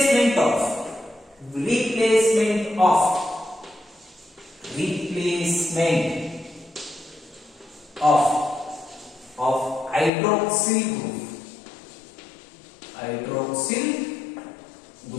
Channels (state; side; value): drops out; right; at 10.1 s